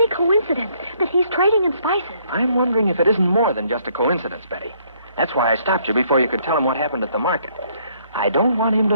coincidence that he's trading in spices? I'm wondering if it isn't more than just a coincidence, Betty. That's why I stopped you before you could tell him what happened at the market. I don't want him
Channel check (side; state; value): both; inverted; correlation -0.66